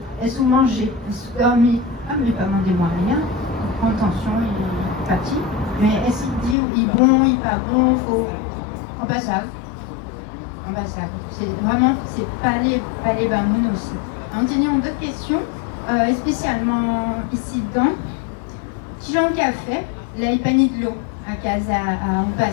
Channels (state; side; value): drops out; right; at 6.6 s